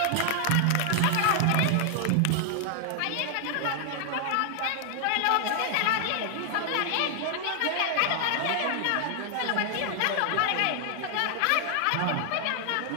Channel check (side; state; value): both; different; correlation 0.00